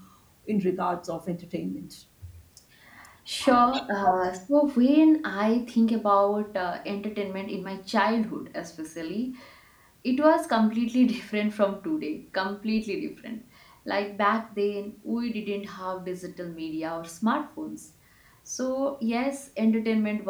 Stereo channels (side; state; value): both; identical; correlation 1.00